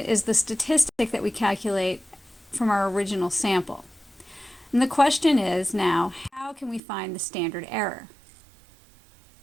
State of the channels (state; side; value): drops out; left; at 6.8 s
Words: is the statistic that we calculate from our original sample. And the question is now, how can we find the standard error?